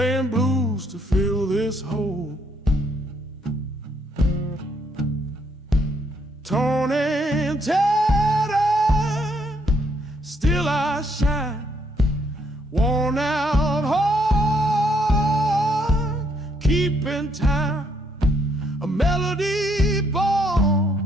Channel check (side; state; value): both; normal; correlation 0.71